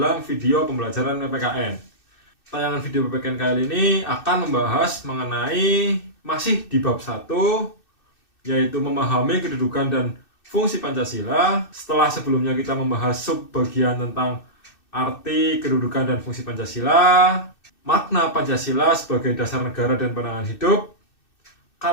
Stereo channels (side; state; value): right; late; 2.6 ms